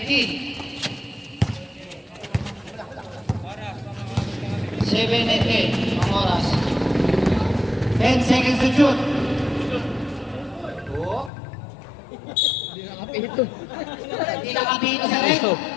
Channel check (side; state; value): right; drops out; at 11.3 s